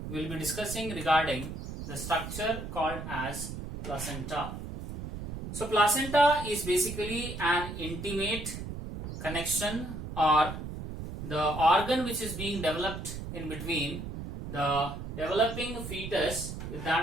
we will be discussing regarding the structure called as placenta. So placenta is basically an intimate connection or the organ which is being developed in between the developing fetus with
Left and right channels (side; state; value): right; noise; rumble, 8 dB below the sound